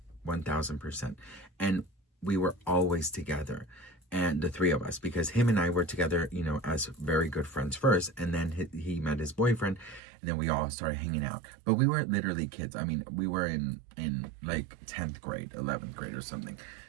1000%. And we were always together. and the three of us, because him and I were together, you know, as very good friends first, and then he met his boyfriend, and then we all started hanging out. But we were literally kids. I mean, we were in like 10th grade, 11th grade or something.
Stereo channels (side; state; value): left; drops out; at 10.0 s